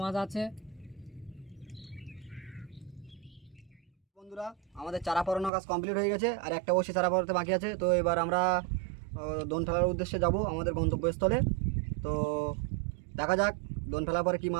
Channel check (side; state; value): left; drops out; at 5.5 s